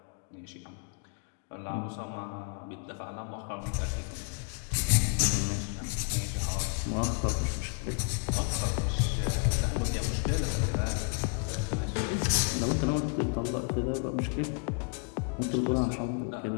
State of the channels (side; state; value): right; quieter; 38.0 dB